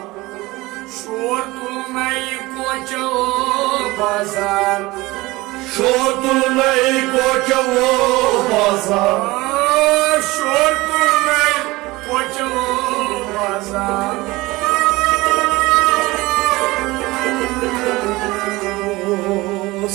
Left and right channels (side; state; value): left; quieter; 20.8 dB